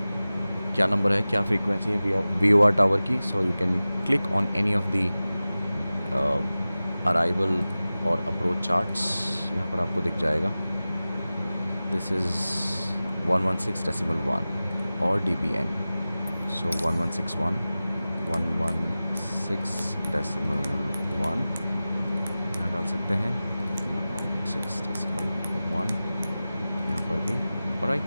क्या नंबर है, क्या फ्रीक्वेंसी है VOR टावर की, so you can click on any of the arrival और अप्रोच चार्ट्स. यहाँ पर आपको दिख जाएगा. दिस इज़ 116.1 और dBn. सो 1161, 116.1 यहाँ डाल सकते हैं. 116.1 यहाँ पर भी.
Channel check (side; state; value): both; inverted; correlation -0.96